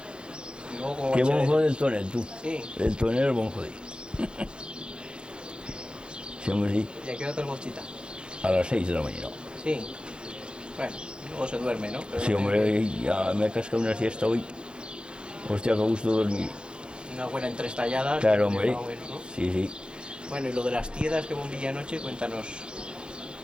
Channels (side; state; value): left; late; 0.052 ms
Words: Y luego como Qué va a bonjo ser- del tonel, tú. Sí. El tonel es bonjo de. Sí, hombre, sí. ¿Y a qué hora te bochita? A las 6 de la mañana. Sí. Bueno, luego se duerme, ¿no? Pero Sí, no hombre, ya me he cascado una siesta hoy. Hostia, que gusto dormir. Una buena entre estalladas. Claro, hombre. Bueno, ¿no? Sí. Bueno, y lo de las tiedas que bombilla anoche, cuéntanos